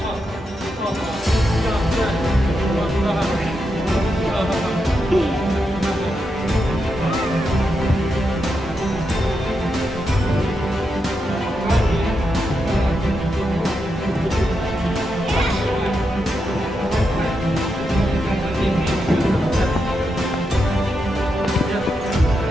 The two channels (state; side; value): normal; both; correlation 0.85